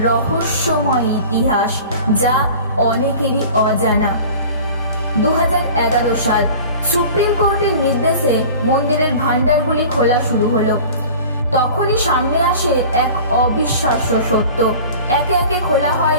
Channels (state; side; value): inverted; both; correlation -0.41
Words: রহস্যময় ইতিহাস যা অনেকেরই অজানা। 2011 সাল সুপ্রিম কোর্টের নির্দেশে মন্দিরের ভান্ডারগুলি খোলা শুরু হলো। তখনই সামনে আসে এক অবিশ্বাস্য সত্য। একে একে খোলা হয়